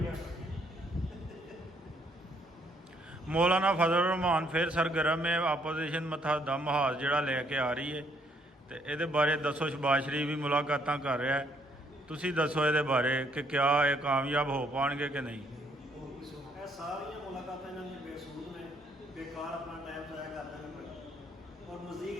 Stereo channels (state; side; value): normal; both; correlation 0.68